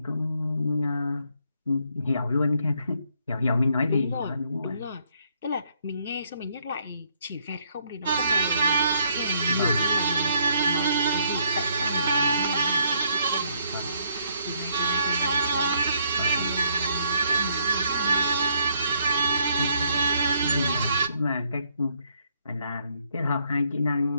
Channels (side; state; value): both; inverted; correlation -0.71